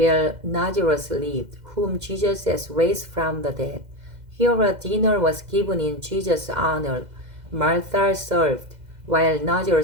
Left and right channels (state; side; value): late; left; 2.0 ms